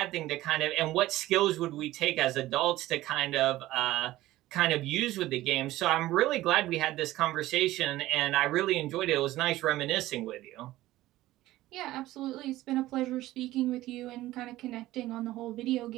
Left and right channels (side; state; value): left; quieter; 16.2 dB